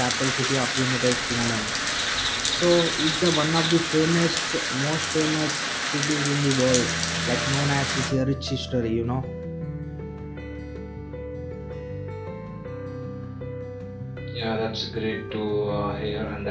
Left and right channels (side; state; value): both; identical; correlation 1.00